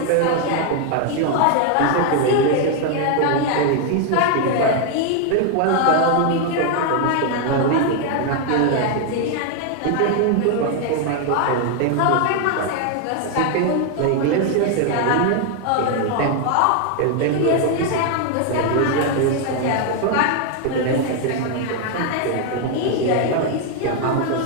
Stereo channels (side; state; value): both; different; correlation 0.00